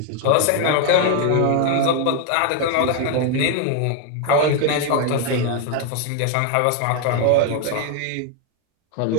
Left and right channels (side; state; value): both; different; correlation 0.00